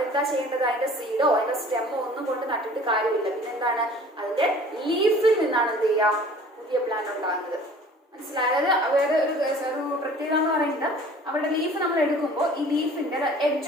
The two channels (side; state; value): both; normal; correlation 0.48